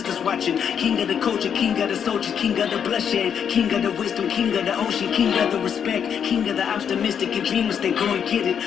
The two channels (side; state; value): right; quieter; 7.9 dB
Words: watching. King of the culture, king of the soldiers, king of the bloodshed. King of the wisdom, king of the ocean, king of the respect. King of the optimistic and dreamers, they go and get it.